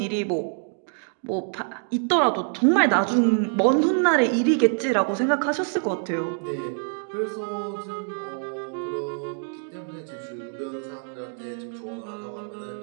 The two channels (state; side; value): silent; left; 61 dB below the other